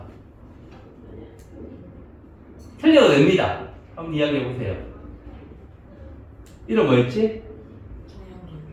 틀려도 됩니다. 한번 이야기해 보세요. 이름 뭐였지?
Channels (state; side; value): identical; both; correlation 1.00